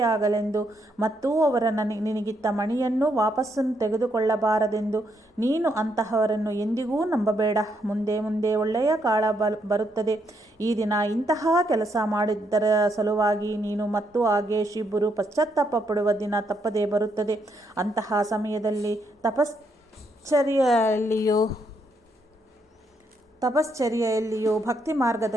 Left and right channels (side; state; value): both; normal; correlation 0.76